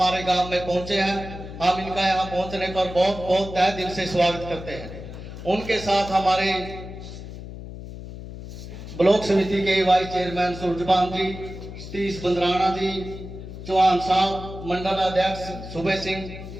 गांव में पहुंचे हैं। हम इनका यहां पहुंचने पर बहुत बहुत तहे दिल से स्वागत करते हैं। उनके साथ हमारे ब्लॉक समिति के वाइस चेयरमैन सूरजपाल जी, सतीश बंदराना जी, चौहान साहब, मंडल अध्यक्ष सुबह सिंह,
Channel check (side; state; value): left; noise; hum, 11 dB below the sound